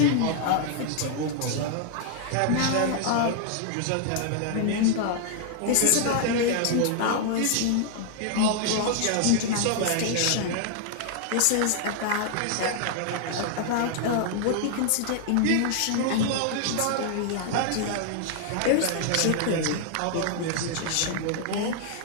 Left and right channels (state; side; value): different; both; correlation -0.01